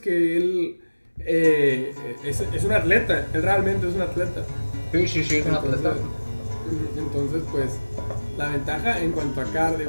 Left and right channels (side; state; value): both; inverted; correlation -1.00